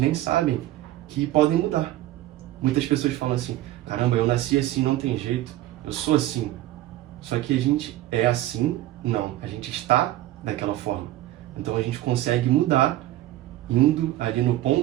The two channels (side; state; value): left; quieter; 15.1 dB